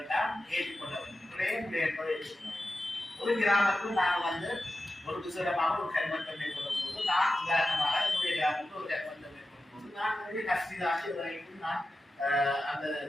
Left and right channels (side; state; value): both; normal; correlation 0.92